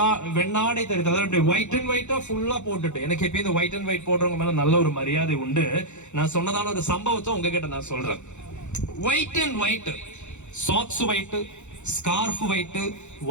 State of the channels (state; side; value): late; right; 0.83 ms